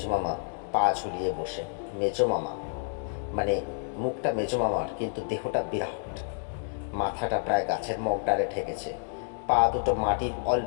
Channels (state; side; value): silent; right; digital silence